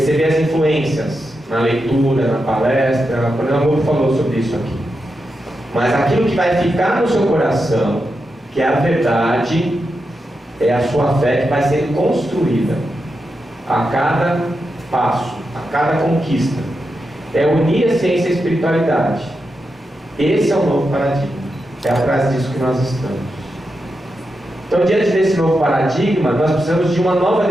as influências na leitura, na palestra. O Coronel Amor falou sobre isso aqui. Mas aquilo que vai ficar no seu coração, que é a verdade, é a sua fé que vai sendo construída a cada passo, a cada conquista. É unir a ciência e a espiritualidade. Esse é o novo paradigma. É atrás disso que nós estamos. Então, diante desse novo paradigma, nós precisamos de uma nova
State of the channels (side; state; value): both; normal; correlation 0.87